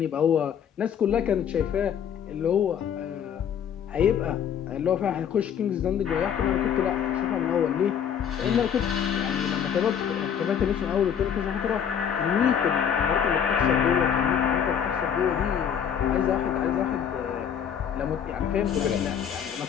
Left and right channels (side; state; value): right; quieter; 8.3 dB